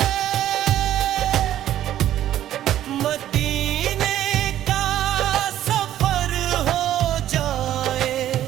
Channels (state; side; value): quieter; left; 12.2 dB